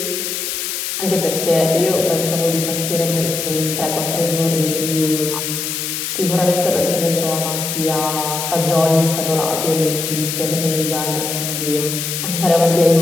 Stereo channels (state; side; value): noise; left; hiss, 3 dB below the sound